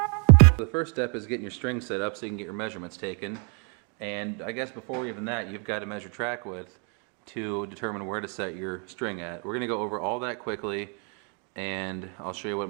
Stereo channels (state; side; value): quieter; left; 37.6 dB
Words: The first step is getting your string set up so you can get your measurements taken. And I guess before even that, you've got to measure track width to determine where to set your string at. We're going to go over all that quickly, and I'll show you what